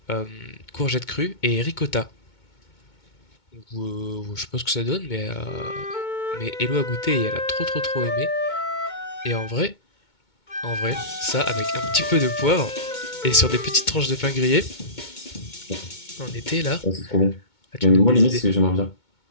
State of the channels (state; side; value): late; right; 2.2 ms